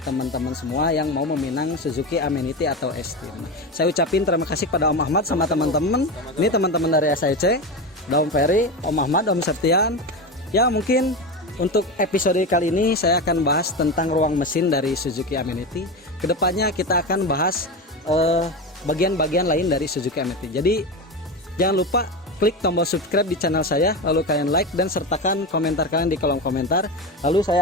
teman-teman semua yang mau meminang Suzuki Amenity atau S-Team. Saya ucapin terima kasih pada Om Ahmad sama teman-teman. Ini teman-teman dari SAIC, Om Ferry, Om Ahmad, Om Septian. Ya mungkin untuk episode kali ini saya akan bahas tentang ruang mesin dari Suzuki Amenity. Kedepannya kita akan bahas bagian-bagian lain dari Suzuki Amenity. Jadi jangan lupa klik tombol subscribe di channel saya, lalu kalian like dan sertakan komentar kalian di kolom komentar. Lalu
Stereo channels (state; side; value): normal; both; correlation 0.21